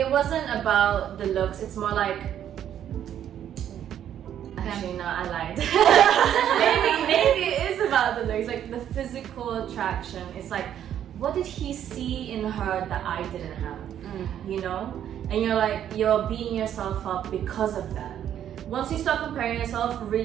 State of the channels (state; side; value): quieter; left; 10.2 dB